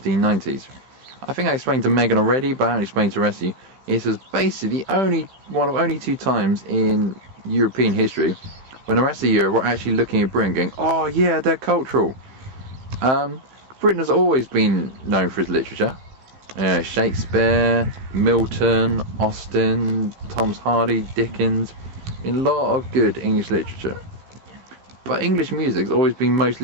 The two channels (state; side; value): late; left; 15 ms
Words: I think I explained to Megan already, but I haven't explained to the rest of you. It was basically one of only two times in European history when the rest of Europe were actually looking at Britain going, oh yeah, they're cultural. Britain has always been known for its literature. Shakespeare, Milton, Austen, Thomas Hardy, Dickens. A lot of good English literature. But English music's always been